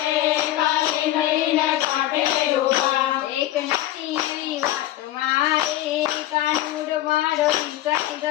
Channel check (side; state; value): right; quieter; 14.3 dB